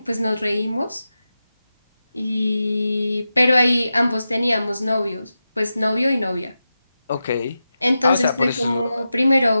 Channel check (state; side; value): inverted; both; correlation -0.91